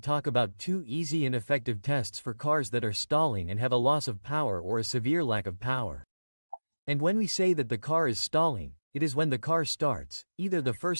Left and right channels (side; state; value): both; inverted; correlation -1.00